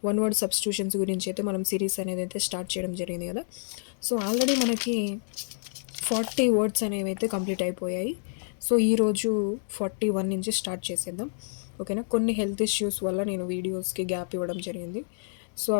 one word substitutions గురించి అయితే మనం సిరీస్ అనేది అయితే స్టార్ట్ చేయడం జరిగింది కదా. సో ఆల్రెడీ మనకి 40 వర్డ్స్ అనేవి అయితే కంప్లీట్ అయిపోయాయి. సో ఈరోజు 41 నుంచి స్టార్ట్ చేసేద్దాం, ఓకేనా. కొన్ని హెల్త్ ఇష్యూస్ వల్ల నేను వీడియోస్కి గ్యాప్ ఇవ్వడం జరిగింది. సో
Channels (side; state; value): right; silent; digital silence